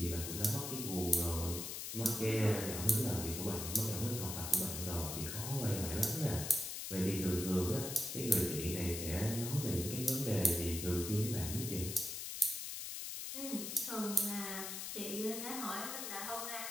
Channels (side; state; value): left; noise; hiss, 5 dB below the sound